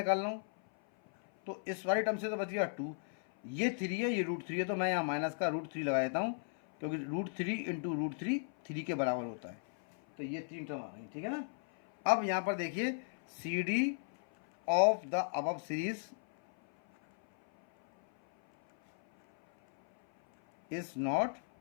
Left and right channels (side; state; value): right; silent; 54 dB below the other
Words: रहा हूँ, तो इस वाली टर्म से तो बच गया 2, ये 3 है, ये √3 है, तो मैं यहाँ माइनस का √3 लगा देता हूँ, क्योंकि √3 × √3 3 के बराबर होता है। तो ये 3 टर्म आ गई, ठीक है ना। अब यहाँ पर देखिए CD of the above series is not